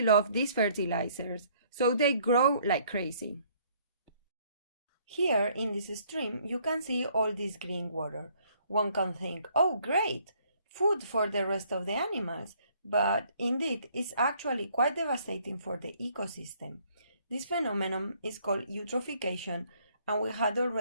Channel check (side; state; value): both; inverted; correlation -0.64